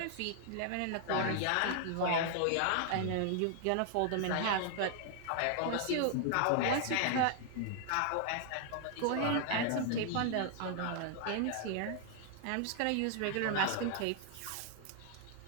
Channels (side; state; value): both; different; correlation 0.00